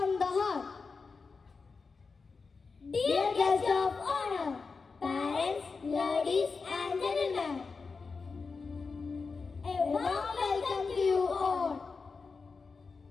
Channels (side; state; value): right; quieter; 4.6 dB